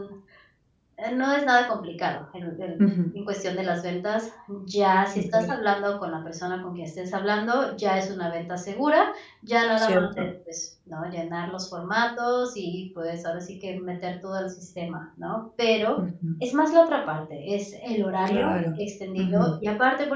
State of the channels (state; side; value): identical; both; correlation 1.00